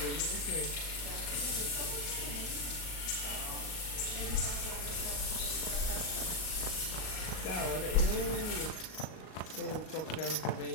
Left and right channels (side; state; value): right; late; 38 ms